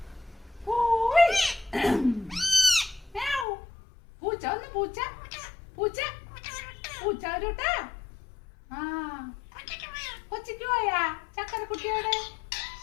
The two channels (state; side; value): drops out; right; at 3.5 s